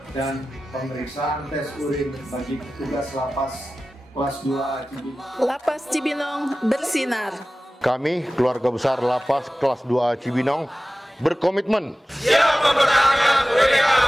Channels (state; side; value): normal; both; correlation 0.96